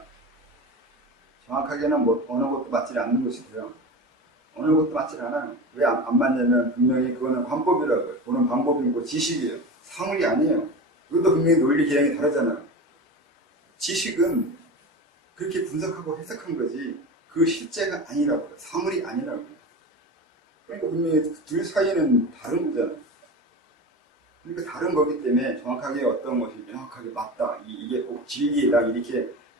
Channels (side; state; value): both; normal; correlation 0.28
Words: 정확하게는 뭐 어느 것도 맞지 않는 것이고요. 어느 것도 맞지 않아요. 왜 안 맞냐면 분명히 그거는 관법이라고요. 보는 방법이고 지식이에요. 사물이 아니에요. 이것도 분명히 논리 개념이 다르잖아요. 지식은 그렇게 분석하고 해석한 거지 그 실제가 아니라고요. 사물이 아니라고요. 그러니까 분명히 둘 사이는 다른 거잖아요. 그러니까 다른 거기 때문에 정확하게 어떤 것이 명확하게 맞다. 이게 꼭 진리다. 이렇게